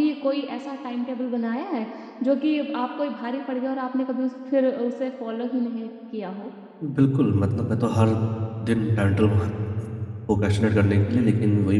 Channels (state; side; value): identical; both; correlation 1.00